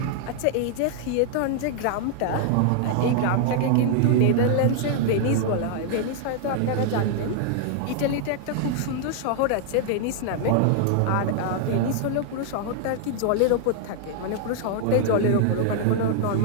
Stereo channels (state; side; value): different; both; correlation 0.00